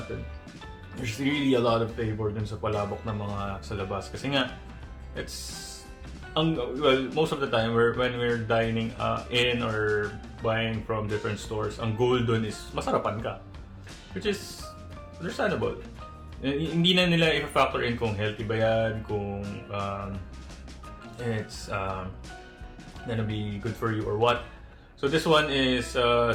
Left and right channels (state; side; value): identical; both; correlation 1.00